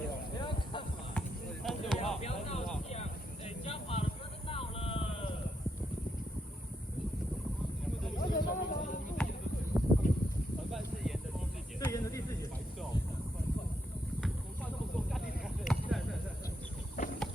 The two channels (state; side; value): normal; both; correlation 0.80